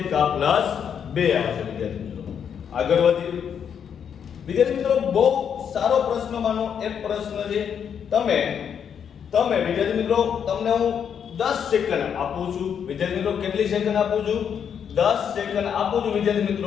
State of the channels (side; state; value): right; quieter; 7.9 dB